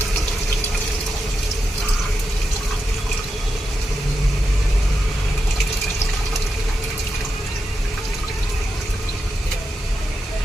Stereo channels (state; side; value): normal; both; correlation 0.87